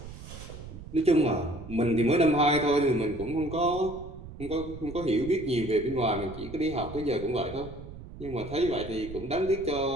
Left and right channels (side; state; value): right; noise; rumble, 13 dB below the sound